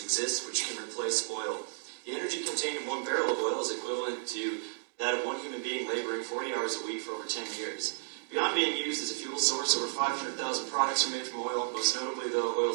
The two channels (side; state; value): left; silent; digital silence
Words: which can replace oil. The energy contained in 1 barrel of oil is equivalent to that of 1 human being laboring 40 hours a week for over 10 years. Beyond being used as a fuel source, over 500,000 products are made from oil. Most notably, though,